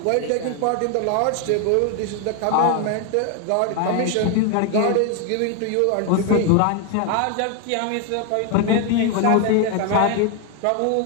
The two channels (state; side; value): different; both; correlation 0.01